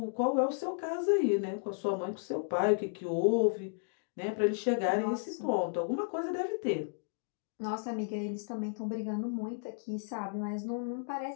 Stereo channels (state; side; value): silent; right; digital silence